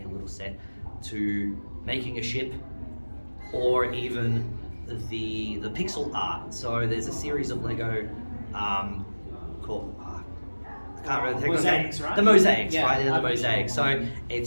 a little set, to making a ship, or even the pixel art. So there's a series of Lego called I can't remember the Mosaics, right? The mosaics, Yeah, right? They're the I've been mosaics. sure. So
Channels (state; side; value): inverted; both; correlation -1.00